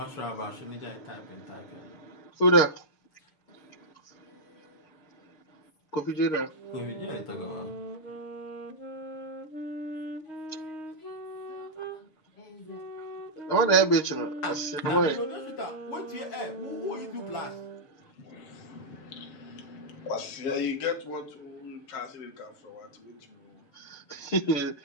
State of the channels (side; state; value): right; late; 6.6 ms